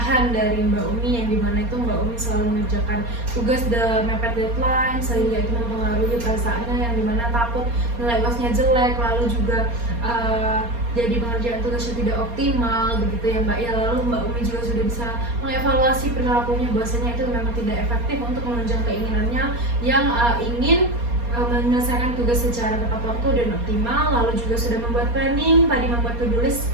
dari Mbak Umi, yang dimana itu Mbak Umi selalu mengerjakan tugas mepet deadline, sehingga itu mempengaruhi perasaannya, yang dimana takut nilai UASnya jelek, lalu juga jadi pengerjaan tugasnya tidak optimal begitu ya Mbak ya. Lalu Mbak Umi juga sudah bisa mengevaluasi perilakunya, bahwasanya itu memang tidak efektif untuk menunjang keinginannya yang ingin menyelesaikan tugas secara tepat waktu dan optimal. Lalu juga sudah membuat planning, tadi membuat to-do list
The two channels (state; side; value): late; left; 4.3 ms